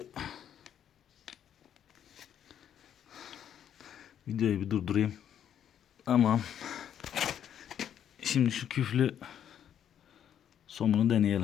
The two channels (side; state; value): right; quieter; 9.6 dB